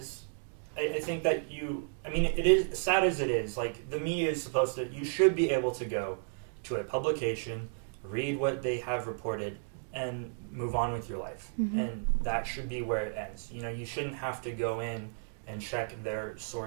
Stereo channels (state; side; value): silent; left; digital silence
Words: I think that it is, sad as it is, like, the media is you should be able to go to a publication, read what they have reported, and move on with your life. Mm-hmm. And that should be where it ends. You shouldn't have to go in and check their